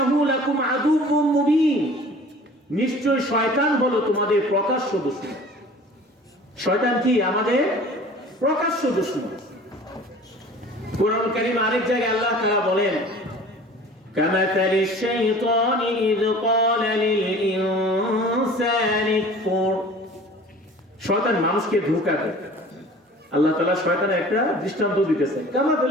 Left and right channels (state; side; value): normal; both; correlation 0.45